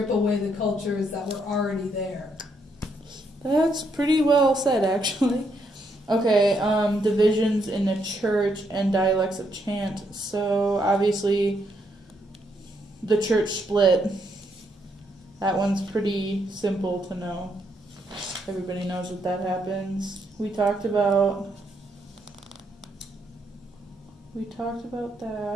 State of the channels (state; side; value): normal; both; correlation 0.76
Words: away the cultures that were already there. That's pretty well said, actually. Okay, divisions in the church and dialects of chant. So, obviously, the church split. That one's pretty simple to know. Everybody knows that that happens. We talked about